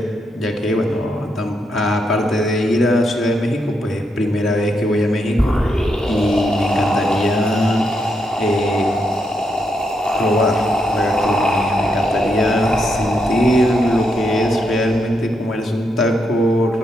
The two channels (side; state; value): both; normal; correlation 0.80